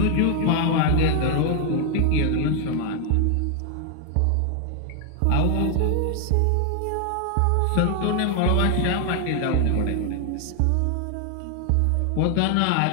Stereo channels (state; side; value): different; both; correlation 0.00